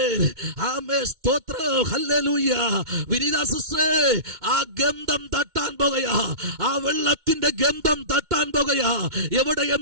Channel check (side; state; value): left; late; 2.2 ms